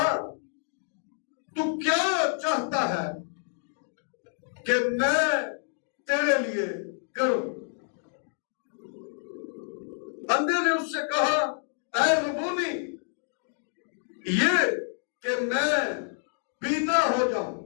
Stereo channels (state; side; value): silent; right; 59 dB below the other